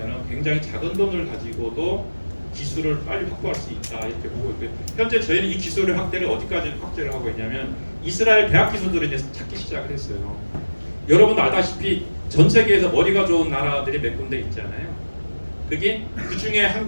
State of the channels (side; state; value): both; inverted; correlation -1.00